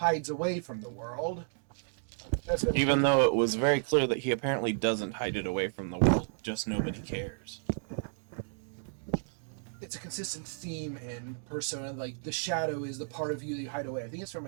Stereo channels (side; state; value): left; silent; digital silence